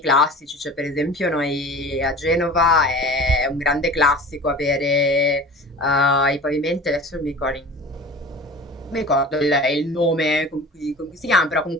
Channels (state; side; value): normal; both; correlation 0.39